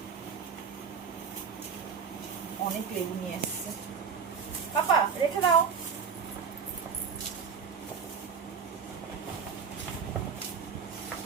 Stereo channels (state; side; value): quieter; left; 6.4 dB